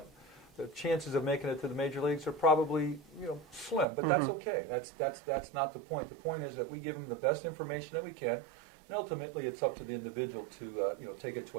the chances of making it to the major leagues are probably slim, but that's okay. That's not the point. The point is that we give them the best information that we can, and ultimately it's up to the individual to take it to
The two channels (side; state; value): left; drops out; at 3.9 s